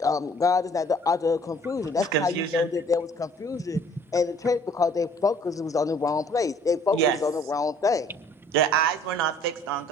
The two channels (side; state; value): both; normal; correlation 0.56